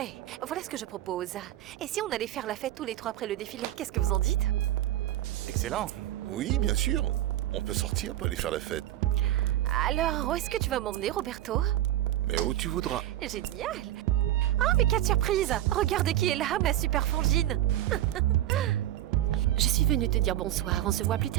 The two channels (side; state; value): left; quieter; 13.3 dB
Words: Voilà ce que je propose. Et si on allait faire la fête tous les trois après le défilé, qu'est-ce que vous en dites? Excellent. Oui, bien sûr. On peut sortir pour aller faire la fête. Alors, où est-ce que tu vas m'emmener, Roberto? Mais où tu voudras. Génial! Oh, mais quelle surprise! Regarde qui est là, ma super frangine! Je suis venue te dire bonsoir, on se voit plus